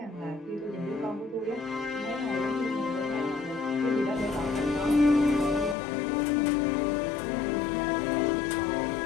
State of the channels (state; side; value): drops out; right; at 5.8 s